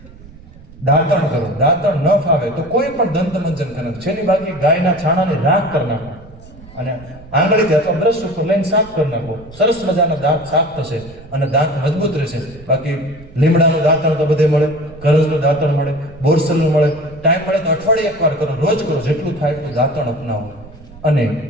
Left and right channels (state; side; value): noise; right; rumble, 20 dB below the sound